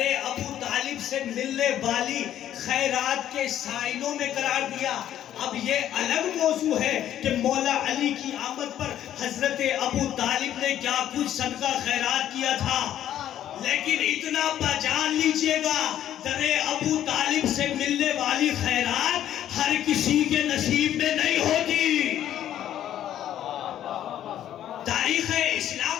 ابو طالب سے ملنے والی خیرات کے سائنوں میں قرار دیا۔ اب یہ الگ موضوع ہے کہ مولا علی کی آمد پر حضرت ابو طالب نے کیا کچھ صدقہ خیرات کیا تھا، لیکن اتنا پہچان لیجئے گا در ابو طالب سے ملنے والی خیرات ہر کسی کے نصیب میں نہیں ہوتی۔ تاریخ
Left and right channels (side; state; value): right; quieter; 11.4 dB